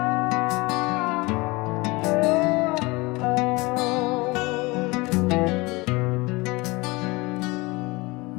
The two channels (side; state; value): right; quieter; 23.8 dB